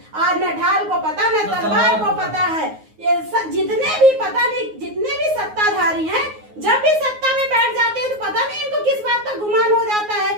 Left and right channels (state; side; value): late; left; 9.5 ms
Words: आज न ढाल को पता न तलवार को पता है। ये जितने भी पता नहीं, जितने भी सत्ताधारी हैं, जब भी सत्ता में बैठ जाते हैं तो पता नहीं इनको किस बात का गुमान हो जाता है